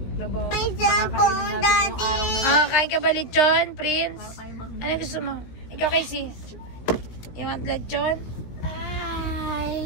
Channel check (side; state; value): right; late; 17 ms